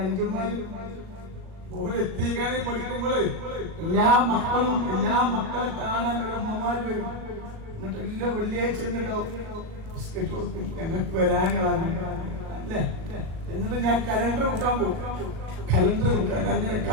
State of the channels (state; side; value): late; left; 38 ms